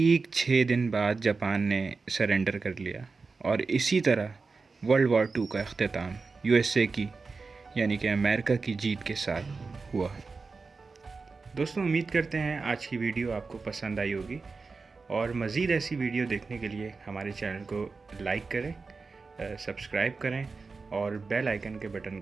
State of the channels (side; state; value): left; quieter; 4.3 dB